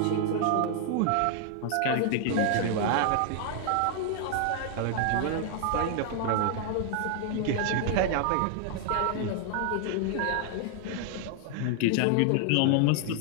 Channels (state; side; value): different; both; correlation 0.00